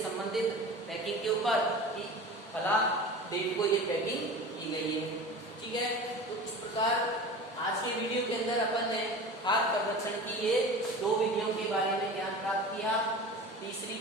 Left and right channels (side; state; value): both; normal; correlation 0.35